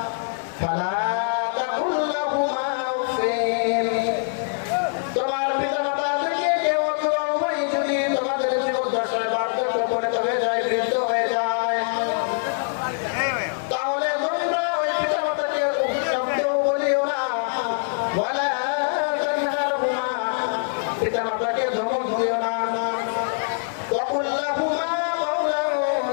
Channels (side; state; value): right; silent; digital silence